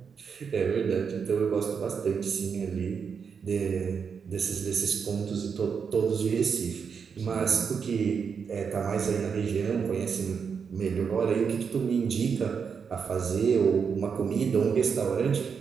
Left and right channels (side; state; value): left; quieter; 6.3 dB